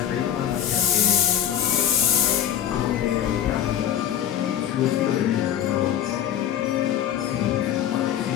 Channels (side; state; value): right; quieter; 10.4 dB